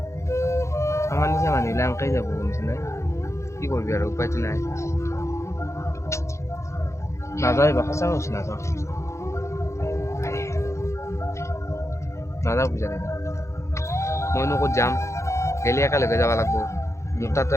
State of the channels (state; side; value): late; right; 0.14 ms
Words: আমাৰ নিচিনা মানুহবিলাক এনেকেই যাব গমছে নাই। কি কৰিবি আৰু উপায়তো নাই। নাযাওঁ এইবাৰ সঁচা কৈছো নাযাওঁ পূজা দিনা। মইনো ক'ত যাম, গেলি একেলগে যাব লাগব। মোৰ তাতো